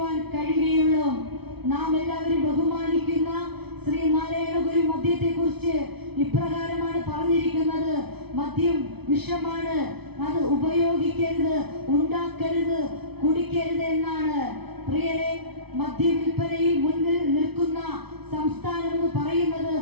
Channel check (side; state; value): left; late; 0.99 ms